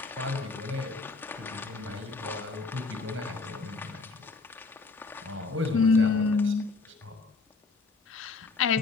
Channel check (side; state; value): right; quieter; 4.0 dB